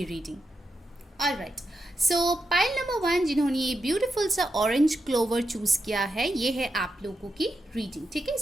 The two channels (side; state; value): both; normal; correlation 0.86